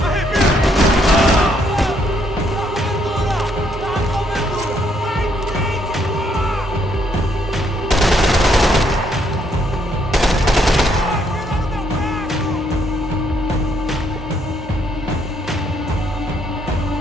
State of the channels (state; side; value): normal; both; correlation 0.71